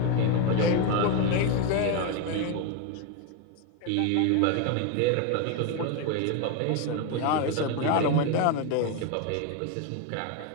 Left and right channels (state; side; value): different; both; correlation 0.02